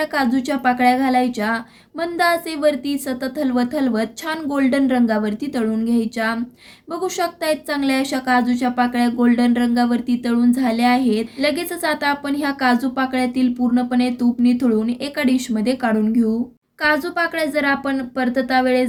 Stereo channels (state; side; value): identical; both; correlation 1.00